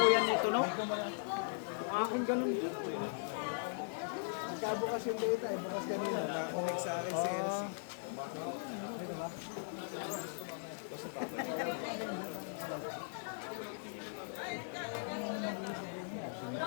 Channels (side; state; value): right; silent; digital silence